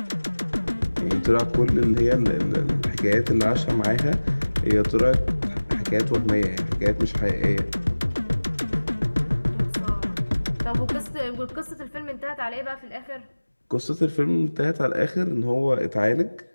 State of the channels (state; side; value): inverted; both; correlation -1.00